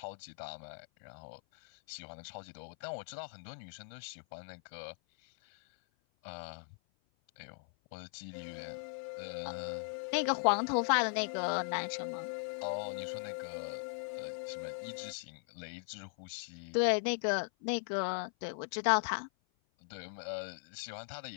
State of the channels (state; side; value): silent; right; 52 dB below the other